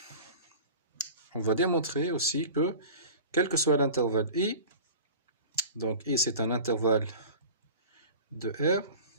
on va démontrer aussi que, quel que soit l'intervalle i, donc i c'est un intervalle de R,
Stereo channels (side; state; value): both; inverted; correlation -0.38